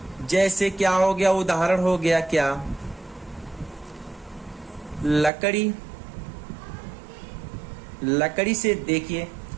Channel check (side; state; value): left; drops out; at 5.3 s